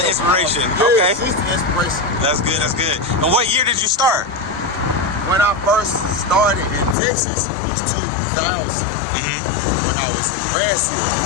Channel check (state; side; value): drops out; right; at 7.0 s